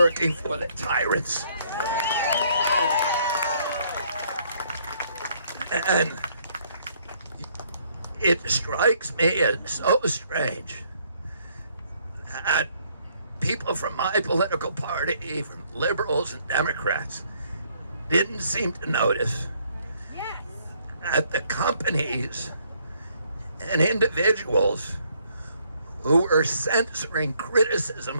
for the tyrants. And it strikes me as so strange that people from my political party, from liberals and Democrats, didn't seem to notice that the companies and individuals who were censoring criticism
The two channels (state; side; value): inverted; both; correlation -0.67